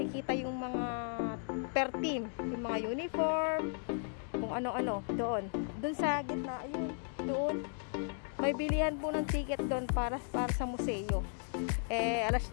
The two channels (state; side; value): silent; right; 54 dB below the other